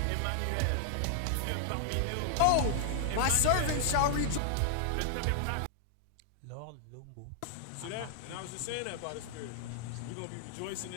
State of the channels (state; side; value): different; both; correlation 0.00